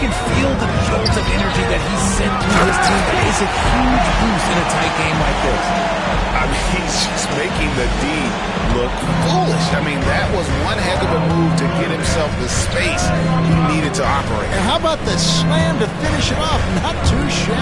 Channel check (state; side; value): identical; both; correlation 1.00